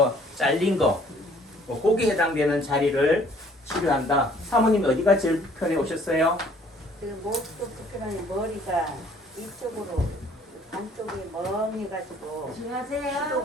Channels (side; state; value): both; normal; correlation 0.58